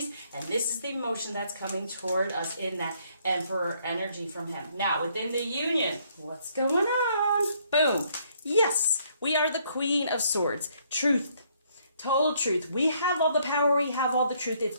and this is the emotion that's coming toward us in that emperor energy from him. Now, within the union, what's going on? Boom. Yes, we are the Queen of Swords. Truth. Total truth. We have all the power. We have all the truth.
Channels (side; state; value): both; inverted; correlation -0.68